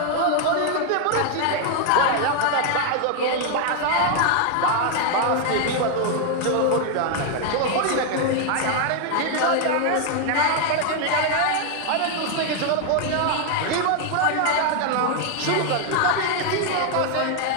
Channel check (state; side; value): different; both; correlation 0.00